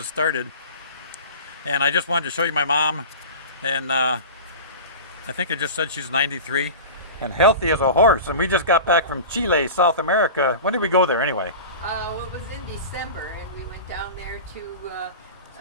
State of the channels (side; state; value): both; inverted; correlation -0.34